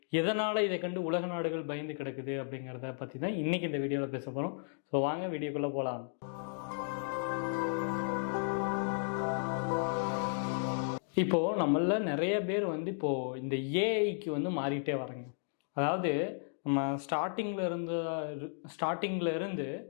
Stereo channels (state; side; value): silent; right; digital silence